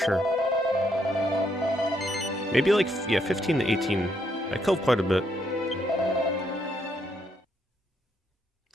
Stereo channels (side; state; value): both; normal; correlation 0.75